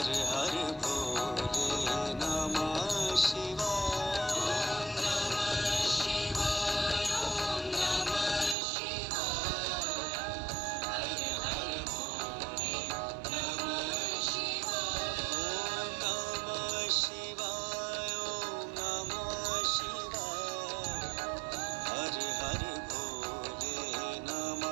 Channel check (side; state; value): left; drops out; at 8.6 s